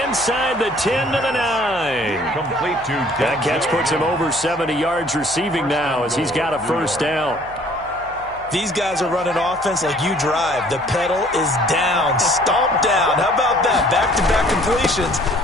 inside the 10 to the 9. Complete to That catch puts him over 70 yards receiving now as he's got a first down. These guys are running offense like you drive. The pedal is down, stomped down. How about that? Back-to-back completions.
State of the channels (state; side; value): noise; left; hum, 23 dB below the sound